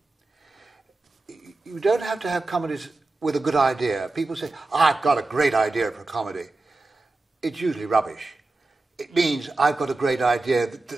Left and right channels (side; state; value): left; quieter; 3.3 dB